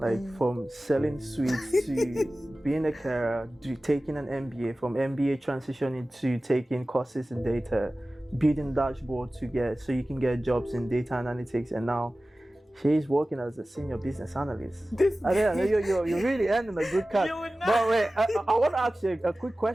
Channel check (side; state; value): both; normal; correlation 0.96